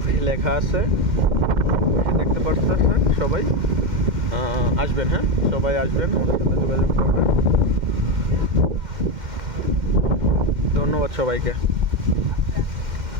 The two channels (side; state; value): left; late; 2.1 ms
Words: ফোসি লেখা আছে, দেখতে পাচ্ছেন। সবাই আসবেন, হ্যাঁ সবাই আসবেন, আমাদের সাথে যোগাযোগ করবেন। ধন্যবাদ সবাইকে।